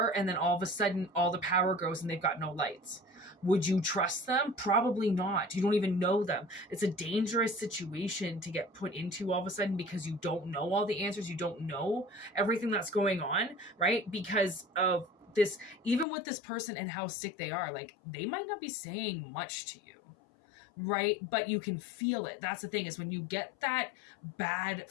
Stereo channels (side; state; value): right; drops out; at 16.1 s